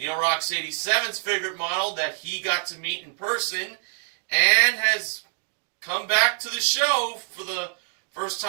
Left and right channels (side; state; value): left; silent; digital silence